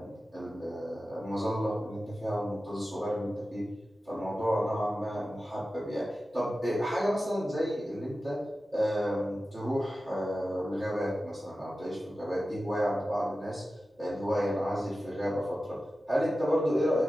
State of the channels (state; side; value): normal; both; correlation 0.94